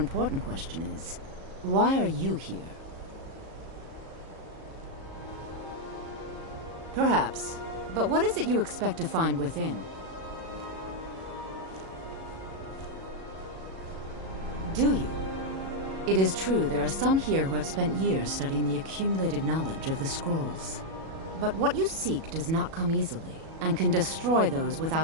question is, why are you here? Perhaps. But what is it you expect to find within? Do you? It is true there are some here who have spent years studying the accumulated knowledge of the scrolls. But what you seek does not come easily, and can destroy those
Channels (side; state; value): left; late; 37 ms